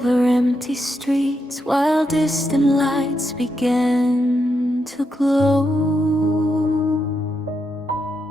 empty streets, while distant lights began to glow.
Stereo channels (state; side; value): normal; both; correlation 0.83